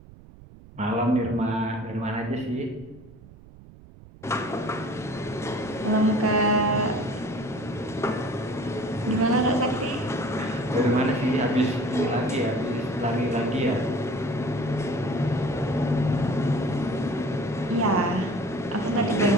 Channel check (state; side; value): noise; right; rumble, 21 dB below the sound